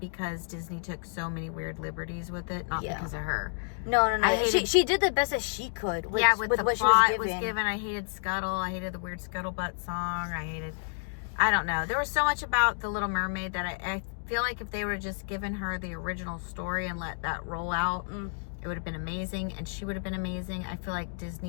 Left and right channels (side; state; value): right; silent; digital silence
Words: Disney took so many weird liberties with it, not because of her. No. She did the best that she could. With the what plot she was given. I hated Scuttle. I hated the weird Scuttlebutt song. I don't know. There was so much about The Little Mermaid that I feel like if they would have just given her the original story and let that roll out, it would have been amazing, and she would have been amazing. I feel like